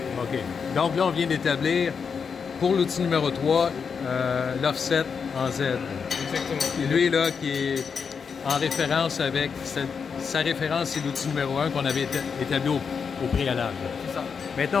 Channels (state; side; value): quieter; right; 6.1 dB